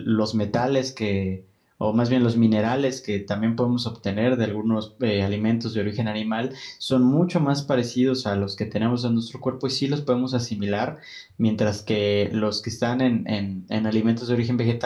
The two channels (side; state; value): both; identical; correlation 1.00